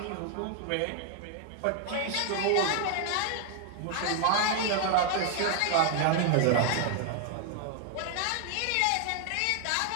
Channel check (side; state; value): both; different; correlation 0.00